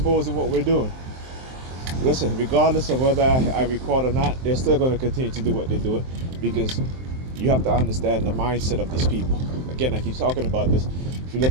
what we're doing. Listen, regardless of whether I record or not, they're still gonna continue to do what they're doing, because you have to understand the mindset of these people. Again, I keep talking about this. If you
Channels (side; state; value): left; late; 23 ms